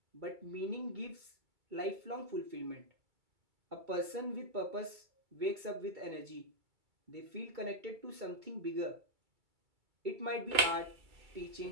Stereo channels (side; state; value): left; late; 2.3 ms